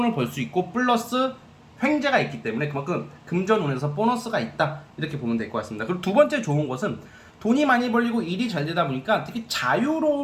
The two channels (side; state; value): both; identical; correlation 1.00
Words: 벌 수 있고, 플러스 횡재가 있기 때문에 그만큼 금전운에서 보너스가 있다, 이렇게 보면 될 것 같습니다. 그리고 두 번째 좋은 것은 돈이 많이 벌리고 일이 잘 되다 보니까 되게